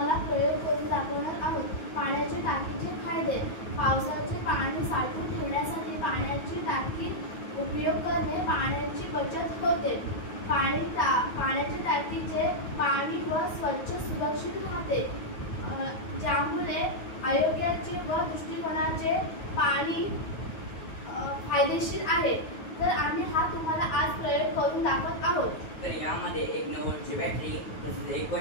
प्रयोग करून दाखवणार आहोत. पाण्याच्या टाकीचे फायदे. पावसाचे पाणी साठवून ठेवण्यासाठी पाण्याची टाकी उपयोग करणे पाण्याची बचत होते. पाण्याच्या टाकीचे पाणी स्वच्छ सुरक्षित राहते, ज्यामुळे आरोग्याचे व दृष्टिकोनाचे पाणी फायदेशीर आहे. तर आम्ही हा तुम्हाला आज प्रयोग करून दाखवत आहोत. तर यामध्ये एक 9 व्होल्टची बॅटरी, तसेच एक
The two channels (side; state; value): right; late; 9.3 ms